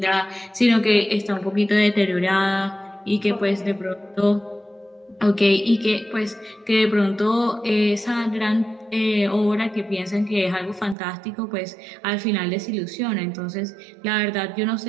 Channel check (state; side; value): drops out; left; at 11.0 s